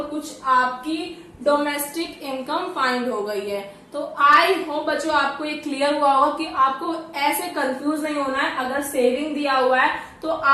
कुछ आपकी डोमेस्टिक इनकम फाइंड हो गई है। तो आई होप बच्चों आपको ये क्लियर हुआ होगा कि आपको ऐसे कंफ्यूज नहीं होना है। अगर सेविंग दिया हुआ है तो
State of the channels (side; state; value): both; identical; correlation 1.00